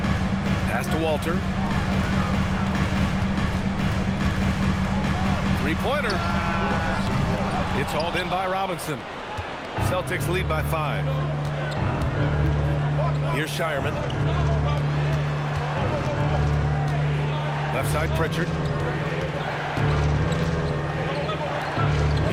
Pass to Walter. Three-pointer. It's hauled in by Robinson. Celtics lead by 5. Here's Shireman. Left side, Pritchard.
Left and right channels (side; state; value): both; identical; correlation 1.00